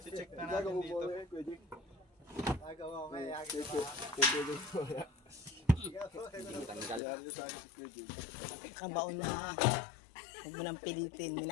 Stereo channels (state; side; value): drops out; right; at 7.0 s